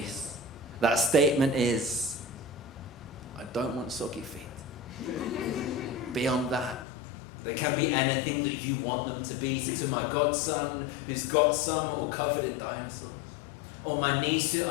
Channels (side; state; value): right; drops out; at 6.9 s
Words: That statement is, I don't want soggy feet. Beyond that, they can be anything that you want them to be. So to my godson, who's got some or covered in dinosaurs, or my niece who